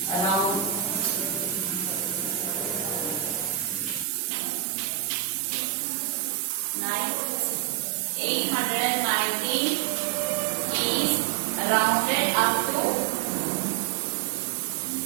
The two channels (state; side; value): drops out; left; at 4.0 s